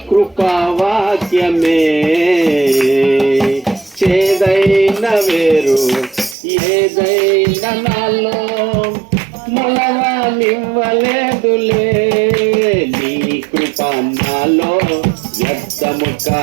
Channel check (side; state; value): left; drops out; at 6.4 s